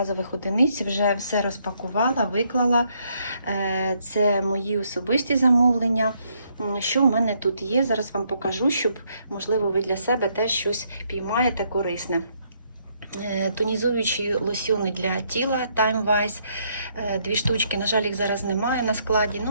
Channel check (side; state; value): both; inverted; correlation -0.72